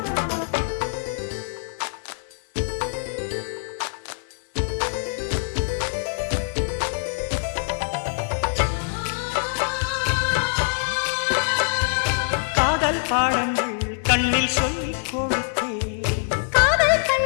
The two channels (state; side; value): silent; right; digital silence